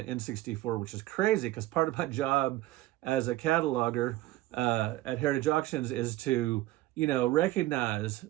N64, which is crazy because part of my job as a cataloger at Heritage Auctions is to, recognize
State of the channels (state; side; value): quieter; left; 16.3 dB